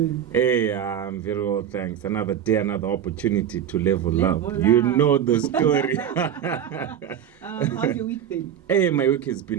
Hey, I'm very well, thanks. Another day, another opportunity to level up. Level You up. know the story. How's your week been? Hey, my week has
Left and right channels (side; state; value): left; quieter; 9.4 dB